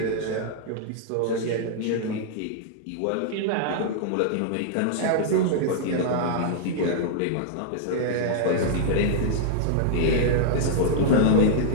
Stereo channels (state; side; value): different; both; correlation -0.02